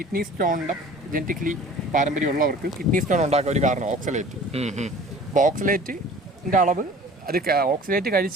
സ്റ്റോണിന്റെ ജനറ്റിക്കലി പാരമ്പര്യമുള്ളവർക്ക് കിഡ്നി സ്റ്റോൺ ഉണ്ടാക്കാൻ ഒരു കാരണം ഓക്സലേറ്റ്. അപ്പൊ ഓക്സലേറ്റിന്റെ അളവ്, അത് ഓക്സലേറ്റ്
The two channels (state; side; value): normal; both; correlation 0.45